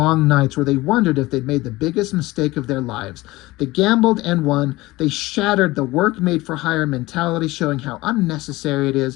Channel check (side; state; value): right; quieter; 19.7 dB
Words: nights where they wondered if they'd made the biggest mistake of their lives. They gambled and won. They shattered the work-made-for-hire mentality, showing how unnecessary it